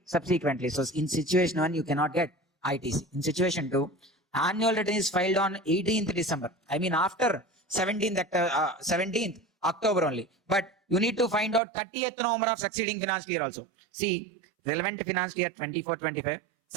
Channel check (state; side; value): drops out; left; at 11.6 s